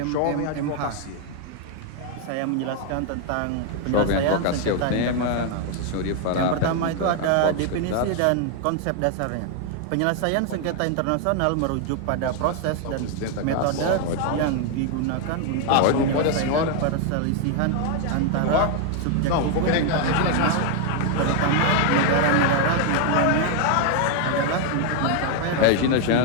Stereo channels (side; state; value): both; different; correlation 0.00